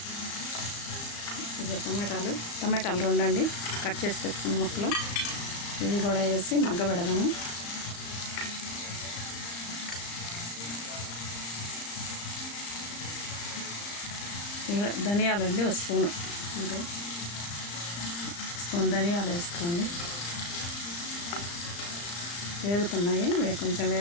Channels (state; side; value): late; right; 35 ms